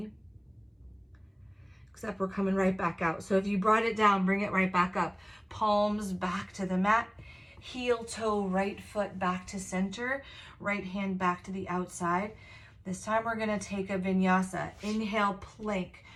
Except we're coming right back out. So if you brought it down, bring it right back up. Palms back to the mat. Heel toe, right foot back to center. Right hand back to the outside. This time we're gonna take a vinyasa. Inhale, plank,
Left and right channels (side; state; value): both; identical; correlation 1.00